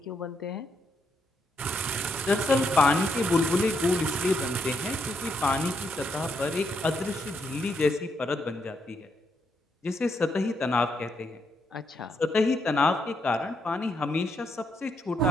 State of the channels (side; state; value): both; normal; correlation 0.78